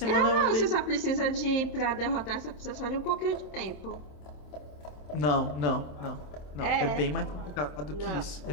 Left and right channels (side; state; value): right; late; 27 ms